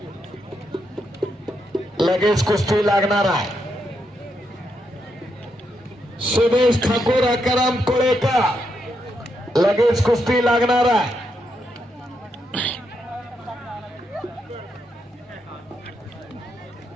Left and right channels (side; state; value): both; normal; correlation 0.81